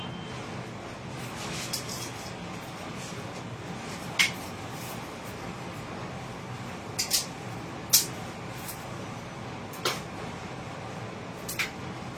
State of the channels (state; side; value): identical; both; correlation 1.00